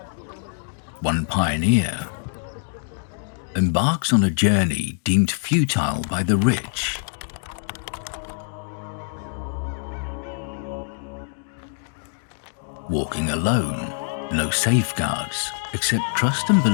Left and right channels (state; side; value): silent; right; 61 dB below the other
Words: one pioneer, embarks on a journey deemed futile by the rich. Walking alone, no safeguards except trust and